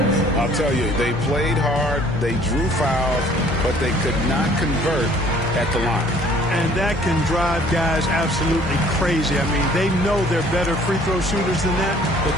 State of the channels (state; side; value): normal; both; correlation 0.56